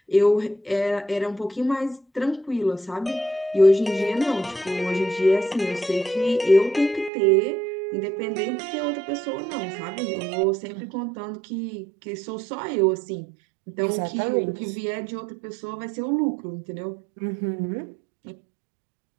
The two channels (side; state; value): left; drops out; at 7.1 s